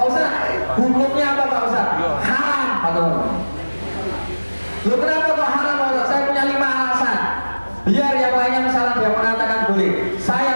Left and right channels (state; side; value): inverted; both; correlation -1.00